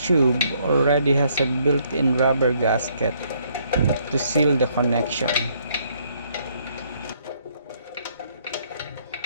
already has a built-in rubber gasket to seal the connection.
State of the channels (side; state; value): both; inverted; correlation -0.68